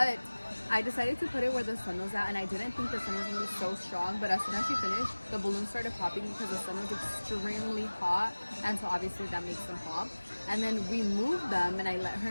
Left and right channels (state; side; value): inverted; both; correlation -1.00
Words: I decided to put it where the sun was at, and I didn't think the sun was going to be so strong, but as soon as she finished, the balloons started popping because the sun was extremely hot, and so obviously that makes them pop. And then we moved them, and I let her